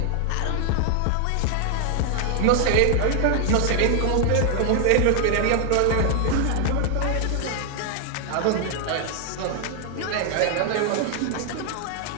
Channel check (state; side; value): different; both; correlation 0.00